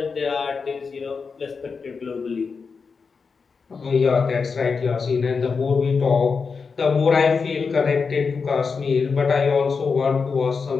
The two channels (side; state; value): right; quieter; 5.1 dB